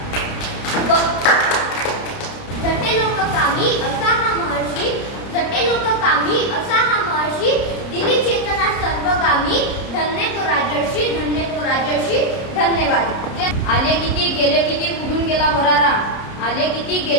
झटे लोक कामी असा हा महर्षी, झटे लोक कामी असा हा महर्षी. दिली चेतना सर्वगामी, धन्य तो राजर्षी, धन्य तो राजर्षी. धन्यवाद. आले किती गेले किती उडून गेला भरारा, आले किती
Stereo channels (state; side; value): late; right; 30 ms